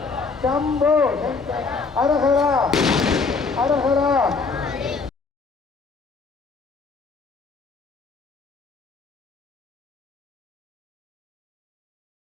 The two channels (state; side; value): quieter; right; 4.5 dB